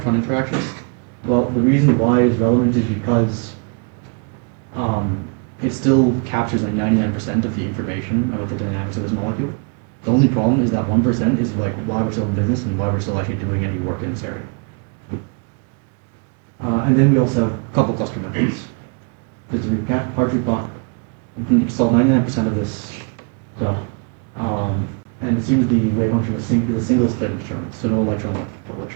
interactions? Well, the reason why it's relevant is because it still captures like 99% of the information about the dynamics of this molecule. The only problem is that 1% is like why we're still in business and why we're still actually doing any work in this area. And then we also have a couple cluster methods. Just to recap, Hartree-Fock can solve 99% of this stuff. And assumes the wave function is a single slated determinant, so no electron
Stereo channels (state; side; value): quieter; left; 37.8 dB